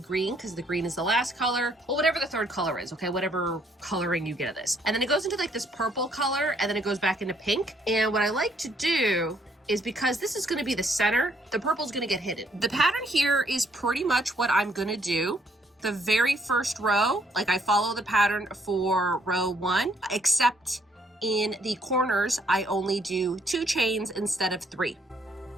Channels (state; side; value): normal; both; correlation 0.68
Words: because the green is the last color, or whatever the third color is, okay, whatever coloring you get of this, and then it goes into like this purple color, and then it goes back into pink. And what I like to do is, because this is going to be the center, the purple is going to get hidden. The pattern here is pretty much what I'm going to do. The very first row, like I follow the pattern for row 1, except in the corners I only do 2 chains instead of 3.